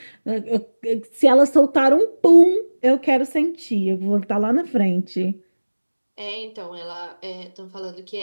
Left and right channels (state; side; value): inverted; both; correlation -1.00